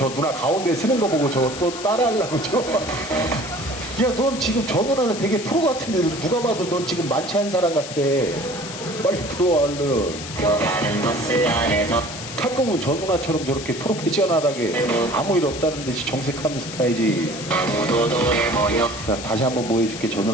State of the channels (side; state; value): left; noise; hiss, 10 dB below the sound